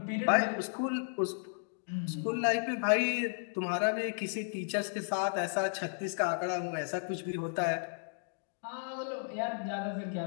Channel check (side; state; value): right; silent; digital silence